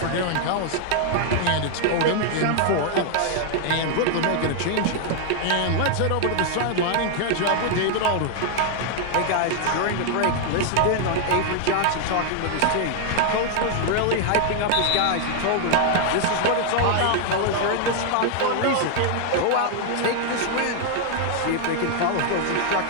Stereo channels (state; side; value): different; both; correlation 0.00